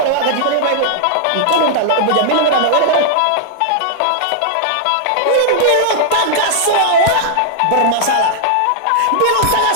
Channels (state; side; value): different; both; correlation -0.01